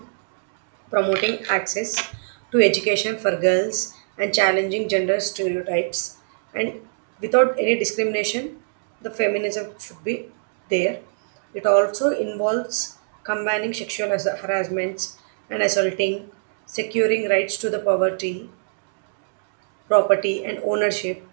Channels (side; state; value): left; silent; digital silence